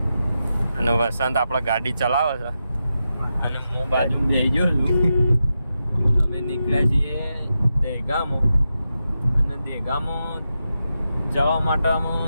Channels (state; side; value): inverted; both; correlation -0.89